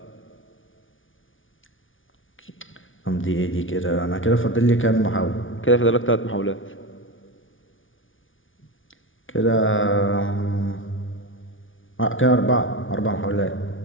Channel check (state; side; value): late; right; 0.57 ms